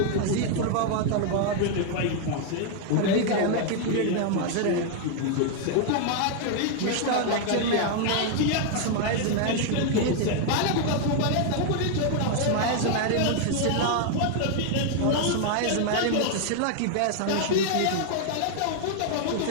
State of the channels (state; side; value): different; both; correlation 0.00